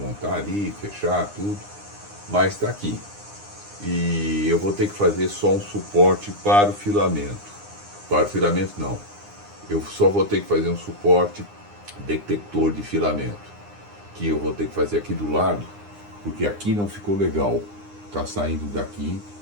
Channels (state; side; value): late; left; 9.8 ms